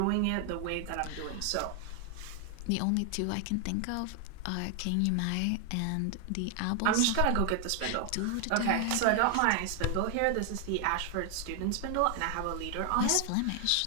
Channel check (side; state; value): both; different; correlation 0.00